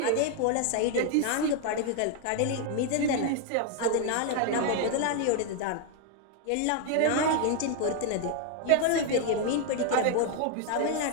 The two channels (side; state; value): both; different; correlation 0.00